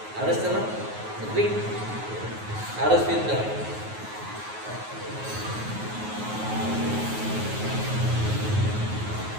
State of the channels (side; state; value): left; late; 9.4 ms